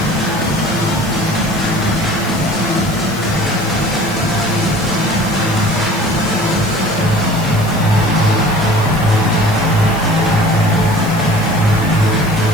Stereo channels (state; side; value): noise; left; hiss, 16 dB below the sound